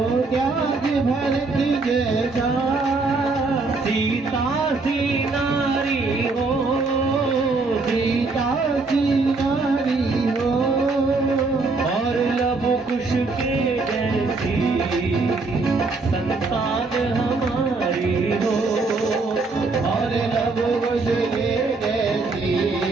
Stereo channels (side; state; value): left; quieter; 3.8 dB